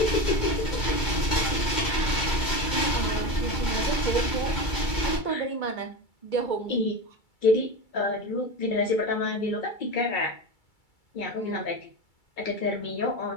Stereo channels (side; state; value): right; late; 2.3 ms